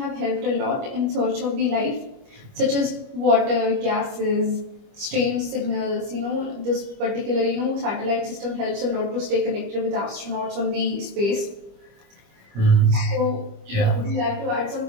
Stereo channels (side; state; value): left; late; 25 ms